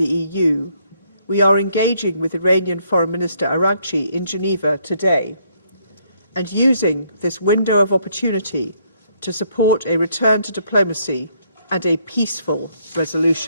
EU, we are engaging with Iranian Foreign Minister Araghchi in Geneva today and using this window of opportunity to support a return to diplomacy and a peaceful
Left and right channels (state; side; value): inverted; both; correlation -0.70